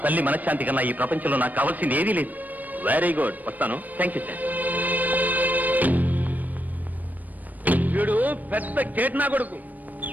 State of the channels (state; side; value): late; left; 0.081 ms